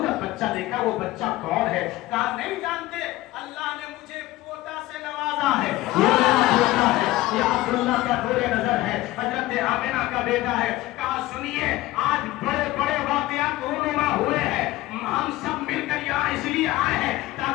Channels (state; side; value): quieter; right; 17.4 dB